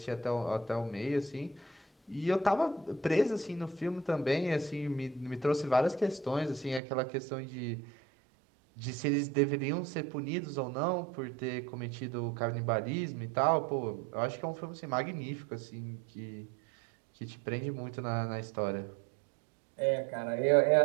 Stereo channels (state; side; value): drops out; left; at 6.8 s